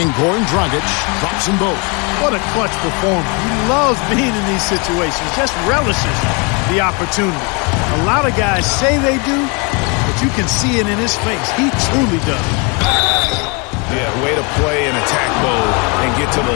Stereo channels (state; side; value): quieter; right; 31.8 dB